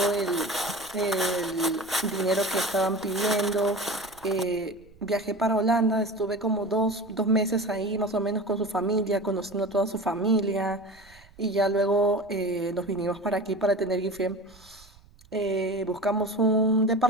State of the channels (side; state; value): right; noise; rumble, 26 dB below the sound